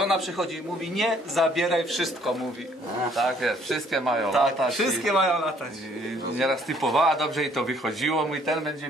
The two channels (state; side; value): normal; both; correlation 0.63